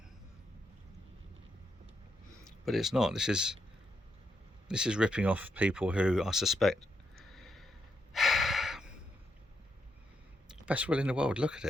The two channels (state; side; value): normal; both; correlation 0.80